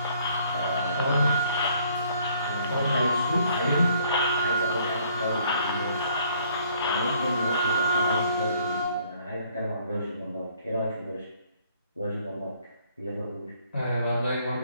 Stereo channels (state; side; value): inverted; both; correlation -0.63